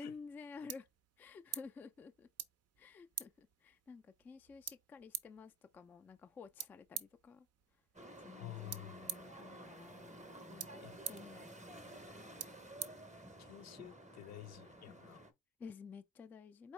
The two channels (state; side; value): normal; both; correlation 0.19